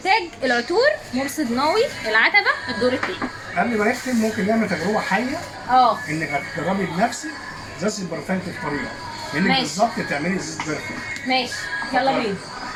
تاج العطور مرصد ناوي العتبه الدور الثاني. قبل ما نختم ممكن نعمل تجربه حيه انك هتجربي بنفسك ازازه البرفان في الطريقه، انك بالظبط تعملي ازازه برفان. ماشي يلا بينا.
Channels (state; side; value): identical; both; correlation 1.00